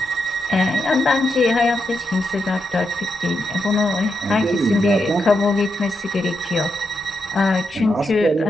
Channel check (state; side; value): normal; both; correlation 0.83